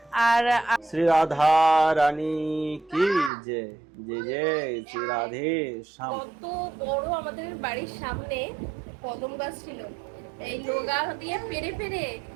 আর শ্রী রাধা রানী কি যে যে যে শ্রী রাধে শ্যাম। কত বড় আমাদের বাড়ির সামনে কদম গাছ ছিল, এই লগা দিয়ে পেরে পেরে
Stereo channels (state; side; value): drops out; left; at 3.3 s